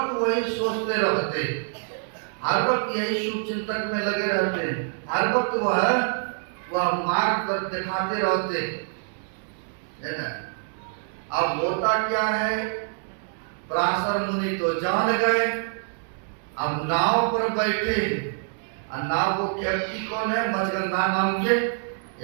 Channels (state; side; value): silent; left; 61 dB below the other